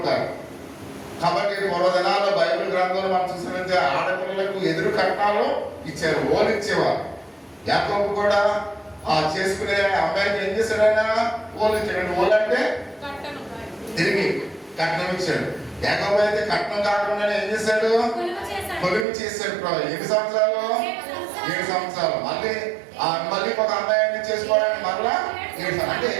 కాబట్టి పూర్వ దినాల్లో బైబిల్ గ్రంథంలో మనం చూసినట్లయితే ఆడపిల్లలకు ఎదురు కట్నాలు ఇచ్చారు, ఓలు ఇచ్చేవారు. యాకోబు కూడా ఆ చేసుకునే అమ్మాయికి ఏం చేశాడైనా ఓలు ఇచ్చాడు. ఓలు అంటే తిరిగి కట్నం ఇచ్చాడు. యాకోబు అయితే కట్నం కాకుండా ఏం చేశాడు? కొలువు చేశాడు. ఎన్ని సంవత్సరాలు? 7 సంవత్సరాలు. మళ్ళీ ఒక అమ్మాయిని చేసుకోవడానికి మరలా 7 అంటే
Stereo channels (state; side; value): drops out; left; at 19.1 s